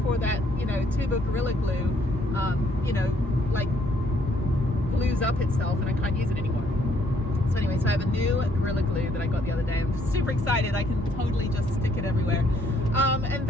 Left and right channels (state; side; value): normal; both; correlation 0.67